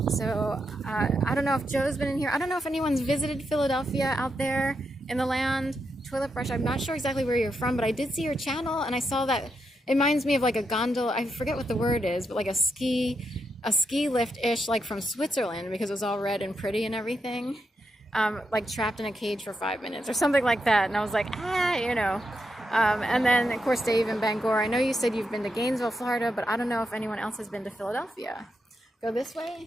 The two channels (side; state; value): both; normal; correlation 0.84